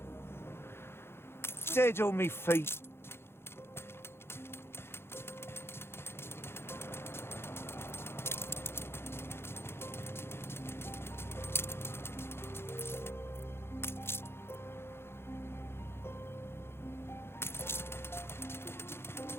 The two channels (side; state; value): right; late; 0.12 ms